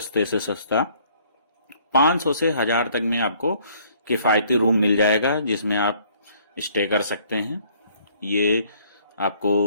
से सस्ता। 500 से 1000 तक में आपको किफ़ायती रूम मिल जाएगा, जिसमें आप स्टे कर सकते हैं। ये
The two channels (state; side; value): inverted; both; correlation -0.61